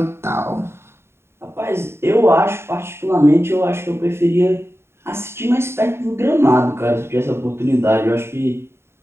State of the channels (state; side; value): late; left; 0.12 ms